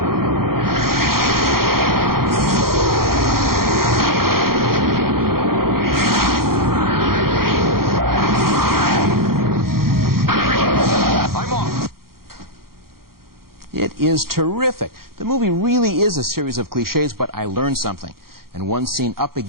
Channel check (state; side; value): late; left; 0.93 ms